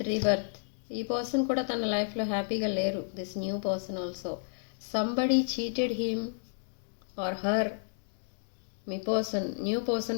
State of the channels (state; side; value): silent; right; digital silence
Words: rebirth. ఈ పర్సన్ కూడా తన లైఫ్లో హ్యాపీగా లేరు. This new person also somebody cheated him or her. మీ పర్సన్, న్యూ